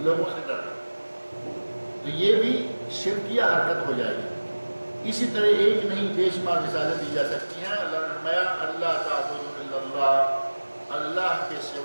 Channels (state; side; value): inverted; both; correlation -1.00